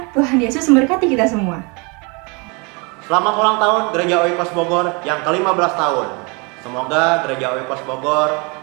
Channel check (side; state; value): left; quieter; 30.5 dB